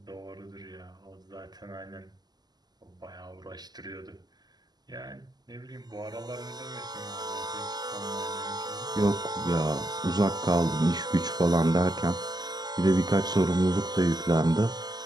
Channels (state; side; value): late; left; 0.20 ms